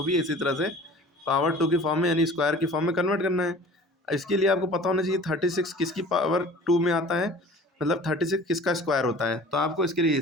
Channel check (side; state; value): both; normal; correlation 0.44